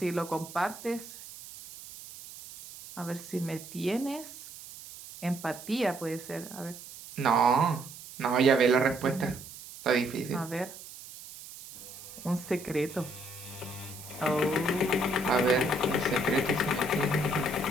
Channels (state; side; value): noise; right; hiss, 15 dB below the sound